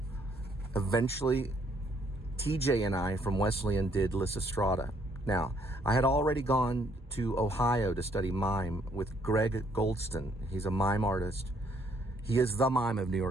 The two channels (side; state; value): both; normal; correlation 0.67